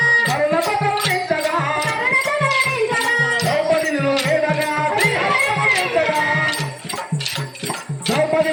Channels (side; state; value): both; identical; correlation 1.00